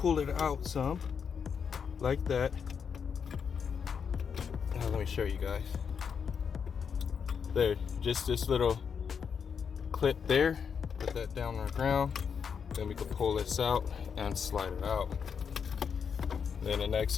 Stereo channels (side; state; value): right; quieter; 6.7 dB